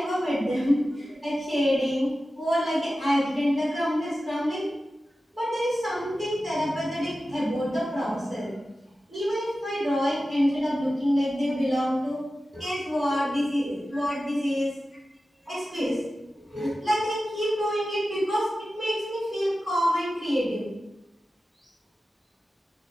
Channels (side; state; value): both; normal; correlation 0.94